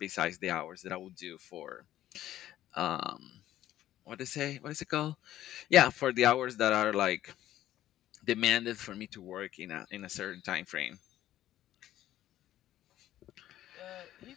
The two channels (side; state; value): right; quieter; 13.2 dB